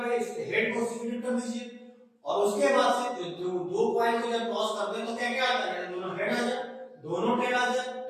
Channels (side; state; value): both; identical; correlation 1.00